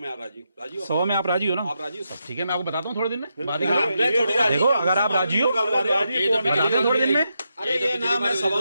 राजी हो? सवा में आप राजी हो ना? आप राजी हो सब? ठीक है, मैं आपको बताता हूँ थोड़े दिन में। बात ही मैं खत्म। थोड़ी राजी देखो, हूँ, अगर आप राजी हो, राजी कौन है? बताते हैं थोड़े दिन में। अरे ये ना मैं सवा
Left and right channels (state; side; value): inverted; both; correlation -0.84